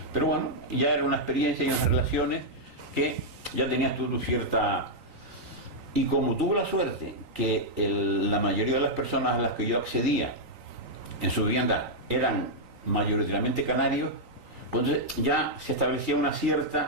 Pero bueno, ya era una experiencia y unas relaciones que ya tenías tú cierta... Y como tuve la suerte que la mayoría de las personas a las que yo accedía en su vivienda eran mayoritariamente canarios, entonces ya se establecía una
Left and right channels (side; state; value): left; late; 3.9 ms